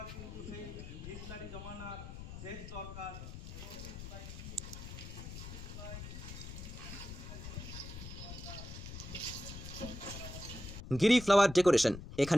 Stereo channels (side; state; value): left; noise; rumble, 10 dB below the sound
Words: কিন্তু সেই হিটলারি জমানার শেষ দরকার। গিরি ফ্লাওয়ার ডেকোরেশন,